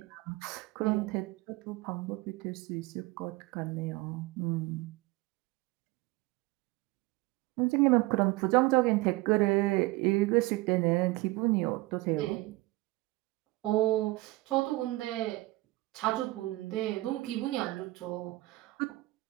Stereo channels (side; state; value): left; quieter; 20.4 dB